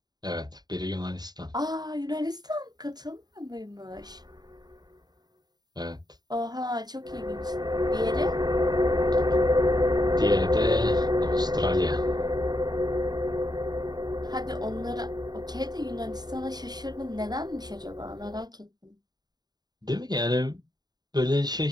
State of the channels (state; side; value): late; left; 0.20 ms